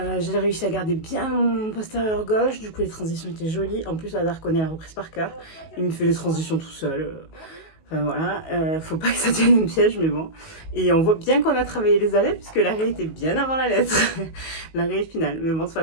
J'ai réussi à garder bien mon postérieur gauche, du coup les transitions étaient jolies. En plus, Hazard connaît la reprise par cœur. Il me fait les transitions tout seul. Enfin voilà, faut pas que ça devienne un piège, mais bon. Et on voit bien qu'on a travaillé les arrêts, puisque l'arrêt était bien avant la lettre. L'arrêt final. Mais bon, c'est pas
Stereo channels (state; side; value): late; right; 19 ms